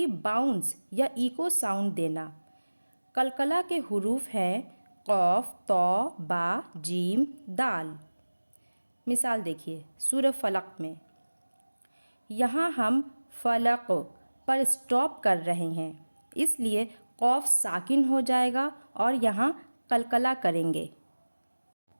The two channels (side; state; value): both; inverted; correlation -1.00